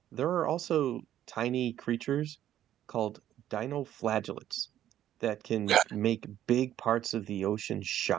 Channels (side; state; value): left; quieter; 11.7 dB